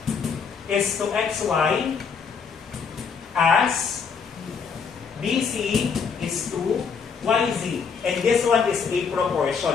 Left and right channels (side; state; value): right; quieter; 6.0 dB